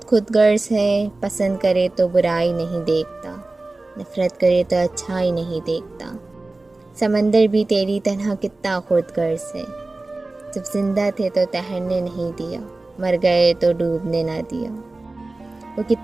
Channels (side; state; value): left; quieter; 3.1 dB